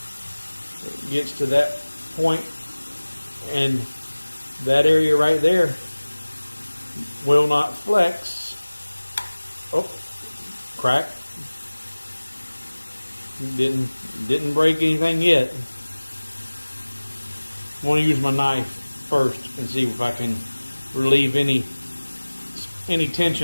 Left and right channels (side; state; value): both; inverted; correlation -1.00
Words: it gets to that point, and that area right there will not flex. Oh, crack. Didn't break anything yet. I want to use my knife first and see if I can relieve any